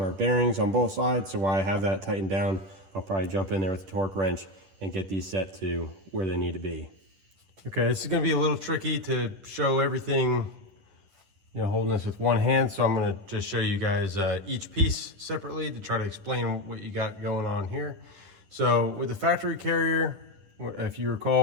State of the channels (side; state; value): left; late; 10 ms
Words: bearings on both sides. So while I have that tightened down, I'll probably jump in there with the torque wrench and get these set to where they need to be. Okay, this is going to be a little tricky to show everything, you know, holding this with one hand. So I'm going to just show you guys each piece separately to try to explain what you got going on here. So with the factory carrier, if you